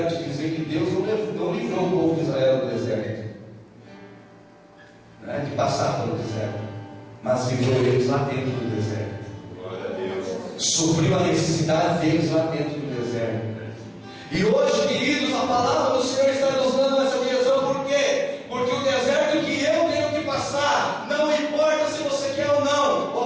te dizer que Deus não livrou o povo de Israel do deserto, né, de passar pelo deserto, mas livrou eles lá dentro do deserto. Glória a Deus. Supriu a necessidade deles lá dentro do deserto. E hoje, queridos, a palavra do Senhor está nos dando essa direção. Por quê? Porque o deserto que eu tenho que passar, não importa se você quer ou não,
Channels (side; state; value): both; identical; correlation 1.00